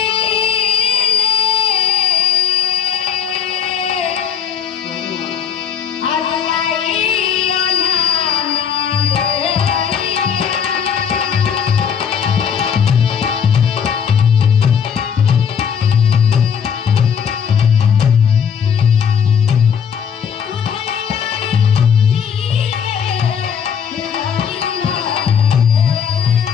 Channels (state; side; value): quieter; right; 7.4 dB